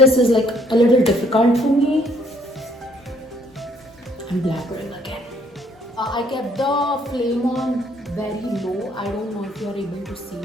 is like a little difficult for me. I'm blabbering again. I kept the flame on very low. I don't know if you're able to see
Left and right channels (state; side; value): normal; both; correlation 0.65